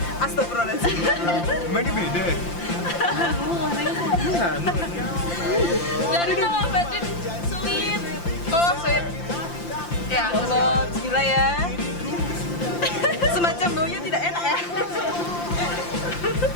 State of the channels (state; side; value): late; right; 5.8 ms